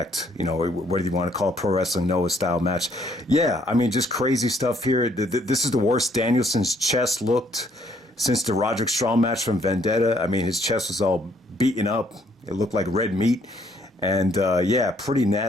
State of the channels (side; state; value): both; normal; correlation 0.67